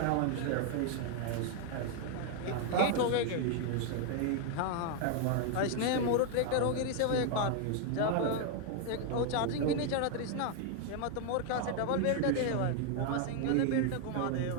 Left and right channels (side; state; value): both; different; correlation 0.00